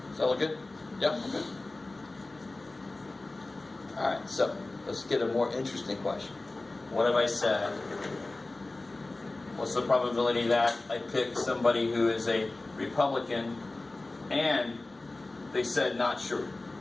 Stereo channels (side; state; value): right; quieter; 3.1 dB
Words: Does that look good? Yep. Okay. Alright, so let's get a more interesting question. What have I said? What's the probability that I pick somebody who is a Republican and they said not sure?